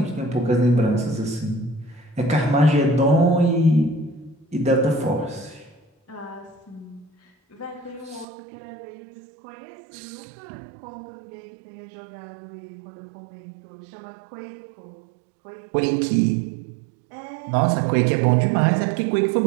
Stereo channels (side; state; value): left; drops out; at 8.2 s